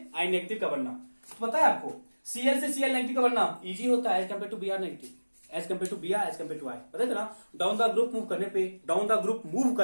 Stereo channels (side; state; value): both; inverted; correlation -1.00